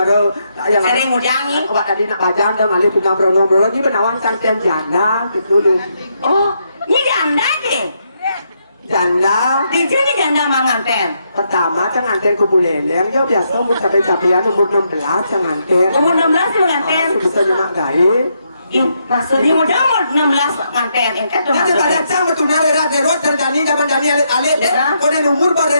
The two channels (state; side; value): inverted; both; correlation -0.78